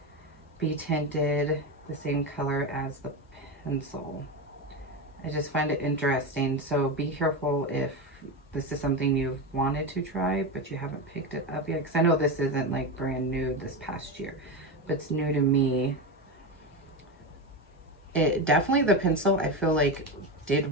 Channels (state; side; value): normal; both; correlation 0.17